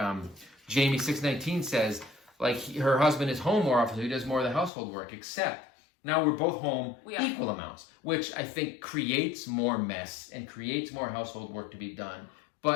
Jamie 619 says, her husband is home more often, so he does more of the household work, except now we're both home equal amounts, which I think creates more mess and creates more household work to be done,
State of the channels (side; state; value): right; drops out; at 4.7 s